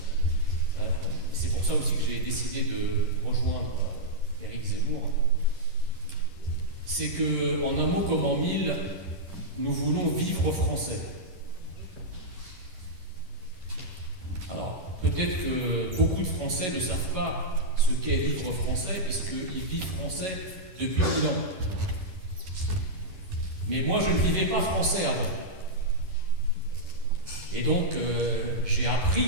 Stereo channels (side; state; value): left; late; 11 ms